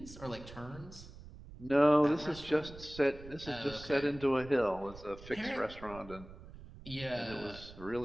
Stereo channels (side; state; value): right; noise; rumble, 16 dB below the sound